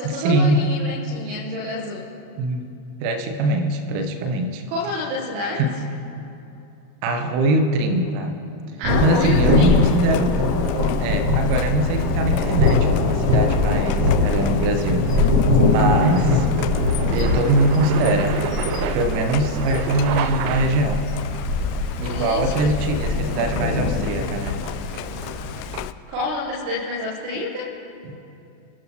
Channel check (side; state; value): left; late; 39 ms